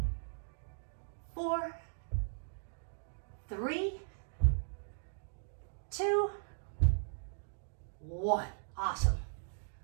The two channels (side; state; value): left; silent; digital silence